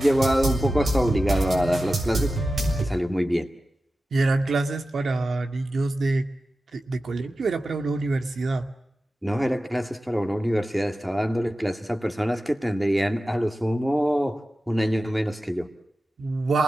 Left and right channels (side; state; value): both; normal; correlation 0.94